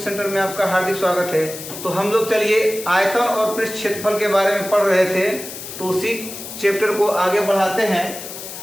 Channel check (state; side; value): noise; left; hiss, 11 dB below the sound